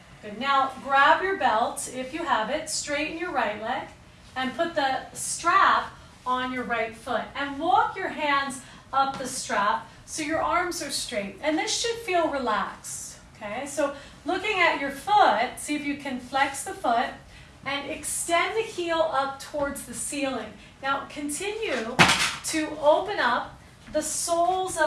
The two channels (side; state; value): both; identical; correlation 1.00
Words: Good. Now grab your belt, if you have it, straighten your right leg, and put the strap on your right foot. And walk your hands up the strap so your arms are straight. And this should feel relaxed. Okay, so looking at your foot, see if you can flex the foot and extend the heel up towards the ceiling. Now continue to open up the soles